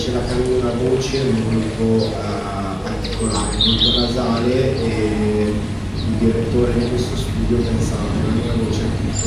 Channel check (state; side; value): identical; both; correlation 1.00